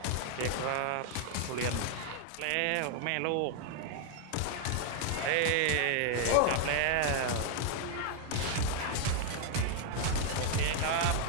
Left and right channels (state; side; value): different; both; correlation 0.00